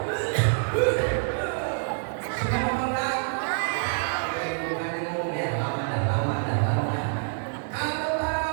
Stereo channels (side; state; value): left; silent; digital silence